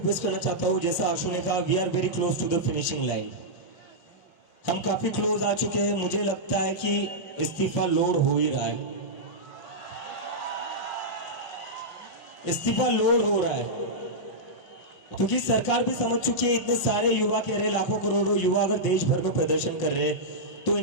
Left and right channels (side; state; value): right; late; 5.7 ms